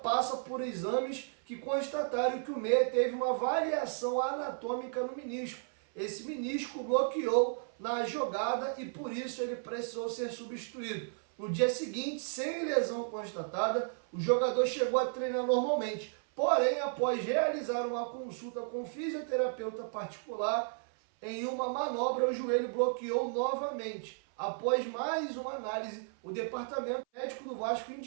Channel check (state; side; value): silent; left; 55 dB below the other